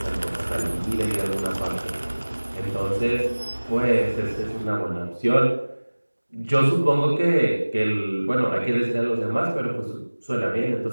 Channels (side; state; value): both; inverted; correlation -1.00